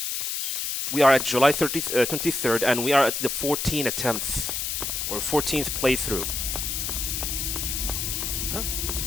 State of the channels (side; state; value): left; noise; hiss, 1 dB below the sound